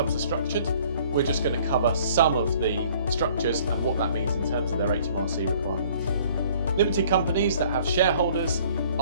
are structured. We're just going to cover some of the structures and what that means in terms of their HMRC requirements. Limited companies that have shareholders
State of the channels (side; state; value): both; inverted; correlation -0.56